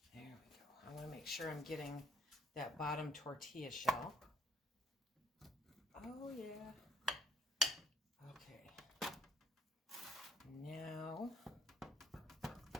there we go. I want to make sure I'm getting that bottom tortilla shell. Oh, yeah. Okay. Now,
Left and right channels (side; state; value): both; normal; correlation 0.68